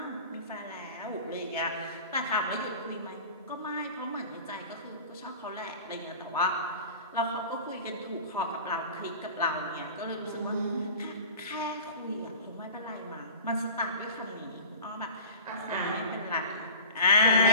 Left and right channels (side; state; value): both; inverted; correlation -0.39